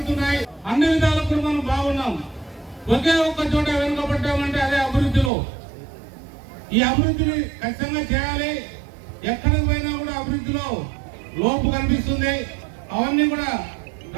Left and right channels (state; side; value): drops out; left; at 5.3 s